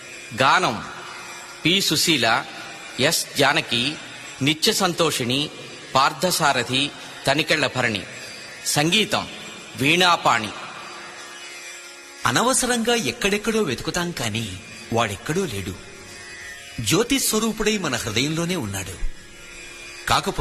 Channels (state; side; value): identical; both; correlation 1.00